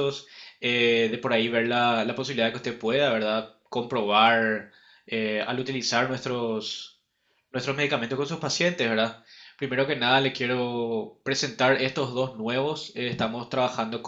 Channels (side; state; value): both; identical; correlation 1.00